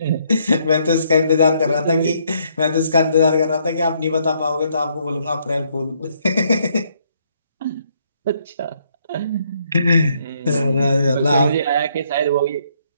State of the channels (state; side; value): inverted; both; correlation -0.70